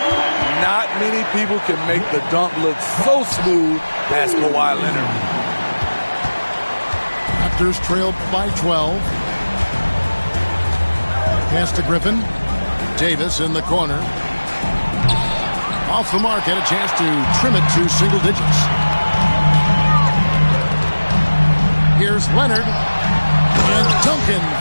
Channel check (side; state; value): both; inverted; correlation -1.00